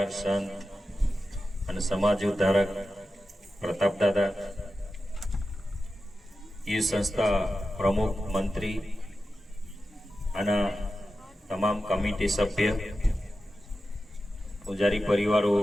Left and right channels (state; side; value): normal; both; correlation 0.92